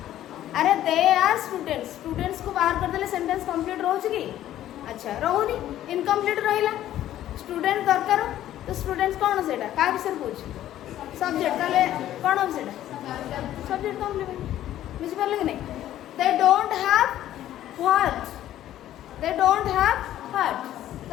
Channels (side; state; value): right; quieter; 12.7 dB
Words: अरे दे आर स्टूडेंट्स स्टूडेंट्स को बाहर कर देले सेंटेंस कंप्लीट रहउची की अच्छा रहउनी इनकम्प्लीट रहिला स्टूडेंट दरकार तो स्टूडेंट्स कौन सेटा का विषय पूछ सब्जेक्ट ताले कौन हो सेटा सब्जेक्ट कंप्लीमेंट बुझि परले कि नहीं दे don't have what they don't have what